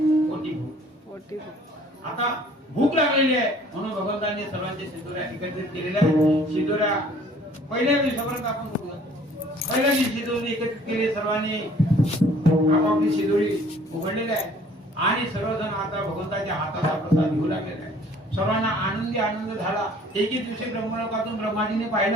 पोटी आता भूक लागलेली आहे म्हणून भगवंतांनी सर्वांचे शिदोऱ्या एकत्रित केलेल्या आहेत. शिदोऱ्या पहिल्या दिवसापर्यंत आपण बघूया. पहिल्या दिवशी शिदोरी एकत्रित केली, सर्वांनी आपापली शिदोरी उघडलेली आहे आणि सर्वजण आता भगवंताच्या हाताचा प्रसाद घेऊ लागलेला आहे. सर्वांना आनंदी आनंद झाला. एके दिवशी ब्रह्मलोकातून ब्रह्माजीने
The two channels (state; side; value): normal; both; correlation 0.55